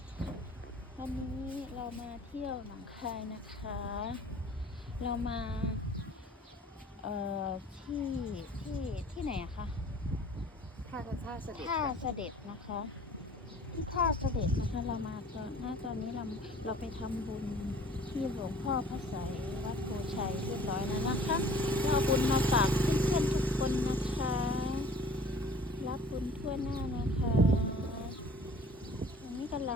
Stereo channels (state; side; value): normal; both; correlation 0.49